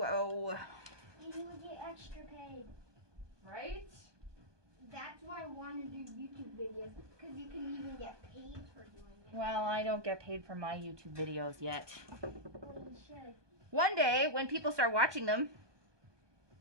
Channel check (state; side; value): late; left; 1.2 ms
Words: And you would get extra paid. Right? That's why I want to do YouTube videos because you can even get paid for doing it. Well, I don't get paid for my YouTube videos yet. Well, you should. One day, when people start watching them,